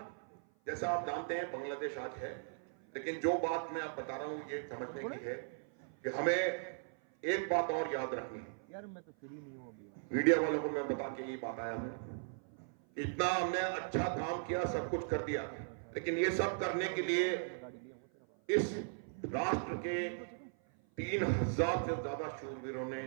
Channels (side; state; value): left; silent; 52 dB below the other